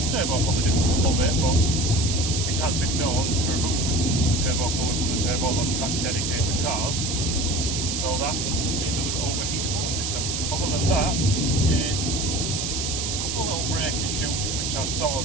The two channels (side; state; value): right; noise; hiss, 2 dB below the sound